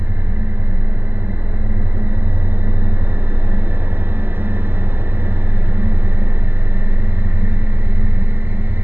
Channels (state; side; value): late; left; 0.094 ms